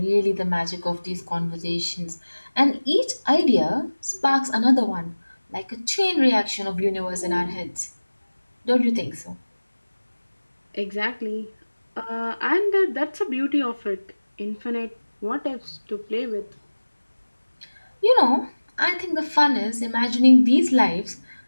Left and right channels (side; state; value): both; inverted; correlation -1.00